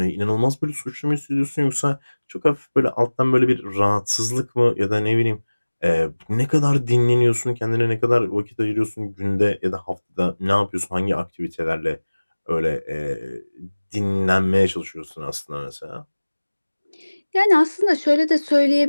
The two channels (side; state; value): both; inverted; correlation -1.00